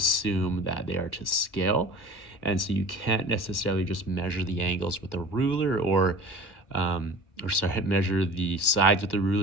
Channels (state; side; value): late; right; 1.5 ms